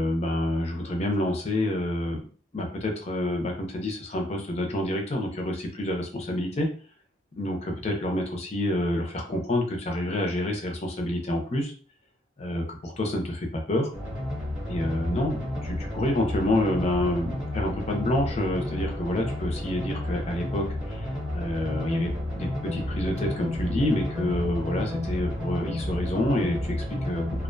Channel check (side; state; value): both; normal; correlation 0.73